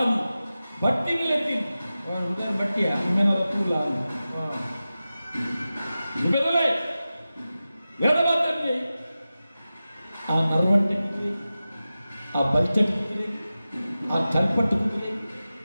ಬಟ್ಟಿ ನಿಲೆತ್ತಿ ಉದಾಹರಣೆ ಬಟ್ಟಿಯ ನಿಮ್ಮೆನರ ತೂಲ ಬೆದಲೆ ಎಡಬಾದಲ್ಲಿ ಆ ನರ್ವಂಟೆ ಕುದುರೆ ಆ ಬಲ್ಚಟ್ ಕುದುರೆ ಆ ಕಲ್ಪಟ್ಟು ಕುದುರೆ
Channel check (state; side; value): inverted; both; correlation -0.94